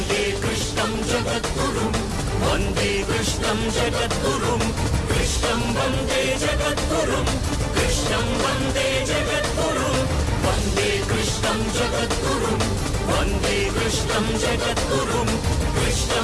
కృష్ణం జగద్గురుం వందే కృష్ణం జగద్గురుం కృష్ణం వందే జగద్గురుం కృష్ణం వందే జగద్గురుం వందే కృష్ణం జగద్గురుం వందే కృష్ణం జగద్గురుం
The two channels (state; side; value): identical; both; correlation 1.00